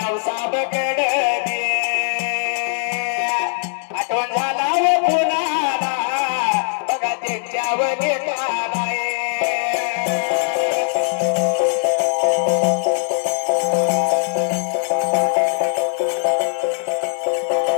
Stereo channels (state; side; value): silent; right; 66 dB below the other